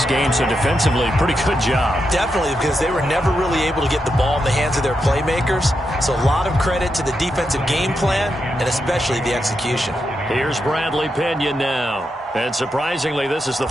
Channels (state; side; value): normal; both; correlation 0.85